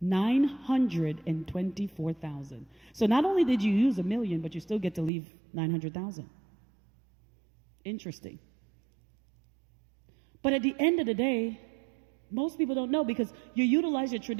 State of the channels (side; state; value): left; drops out; at 5.1 s